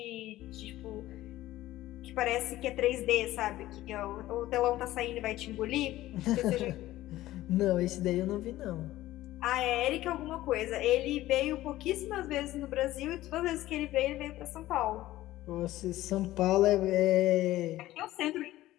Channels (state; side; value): quieter; right; 15.6 dB